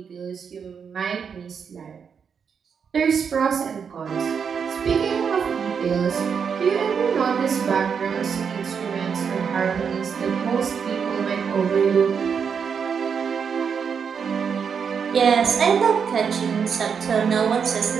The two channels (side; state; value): left; quieter; 6.6 dB